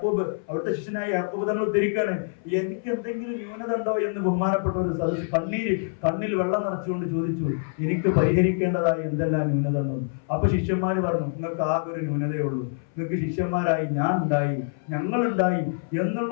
അവിടുത്തെ ശിഷ്യനായ യാക്കൂബ് തങ്ങൾ ഉദ്ധരിക്കാണ്, എനിക്ക് എന്തെങ്കിലും ന്യൂനത ഉണ്ടോ എന്ന് ബഹുമാനപ്പെട്ട ഒരു സദസ്സ് കണ്ണിൽ വെള്ളം നിറച്ചുകൊണ്ട് ചോദിച്ചു, എനിക്ക് പരിഹരിക്കേണ്ടതായ എന്തെല്ലാം ന്യൂനത ഉണ്ടോ. അപ്പൊ ശിഷ്യന്മാര് പറഞ്ഞു, നിങ്ങൾക്ക് ആകെ ഒരു ന്യൂനതയേ ഉള്ളൂ, നിങ്ങൾക്ക് ശിഷ്യന്മാരായി ഞാൻ ഉണ്ടായി, ഞങ്ങളുണ്ടായി എന്നുള്ള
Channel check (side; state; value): right; silent; 59 dB below the other